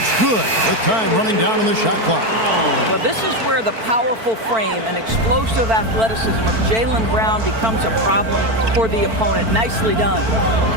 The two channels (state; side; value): late; left; 4.5 ms